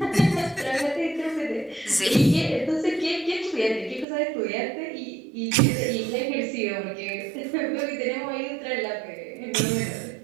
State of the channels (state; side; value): drops out; left; at 4.0 s